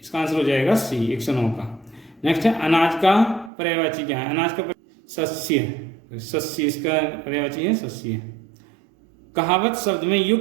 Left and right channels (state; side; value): drops out; left; at 3.5 s